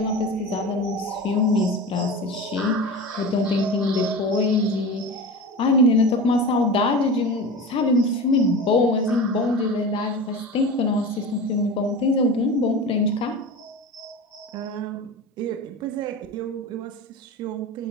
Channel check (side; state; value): both; normal; correlation 0.30